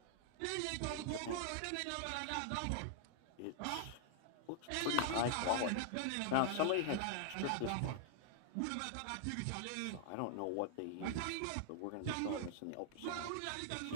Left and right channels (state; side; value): different; both; correlation -0.01